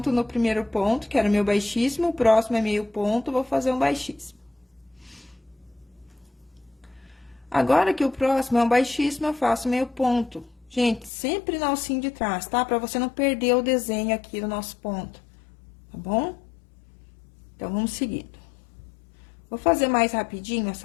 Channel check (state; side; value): drops out; right; at 11.1 s